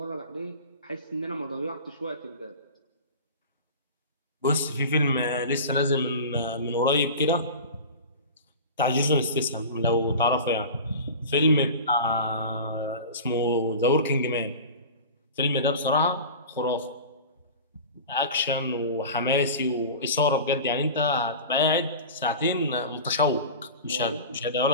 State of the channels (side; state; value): both; inverted; correlation -0.34